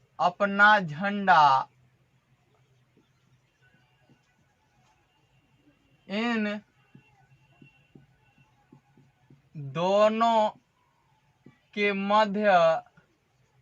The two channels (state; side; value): identical; both; correlation 1.00